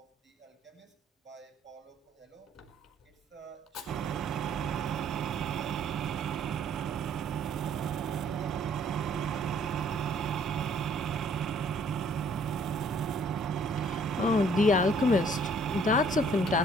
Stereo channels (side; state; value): both; normal; correlation 0.61